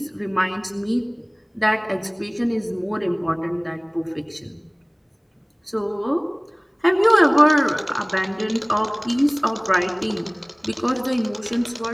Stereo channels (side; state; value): both; identical; correlation 1.00